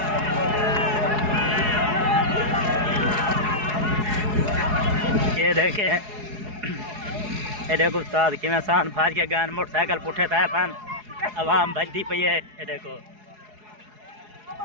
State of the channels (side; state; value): left; late; 4.8 ms